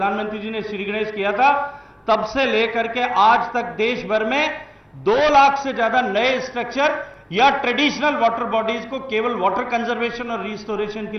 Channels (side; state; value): both; identical; correlation 1.00